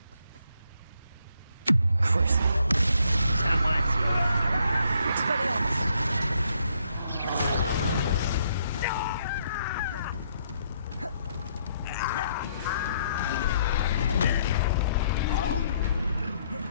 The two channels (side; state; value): both; inverted; correlation -0.71